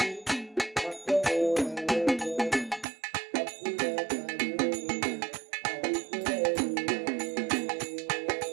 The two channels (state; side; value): drops out; left; at 2.9 s